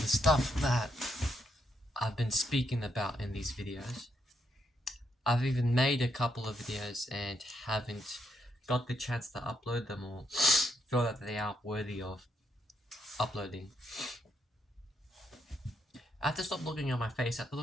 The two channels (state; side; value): normal; both; correlation 0.77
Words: stuff that I've been speaking about in these videos. I've even made a couple of videos and haven't got the chance to upload them or feel that they are worthy of uploading. I have to stop looking at my face. I have to